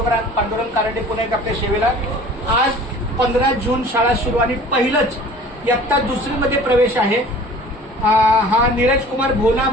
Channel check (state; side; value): normal; both; correlation 0.45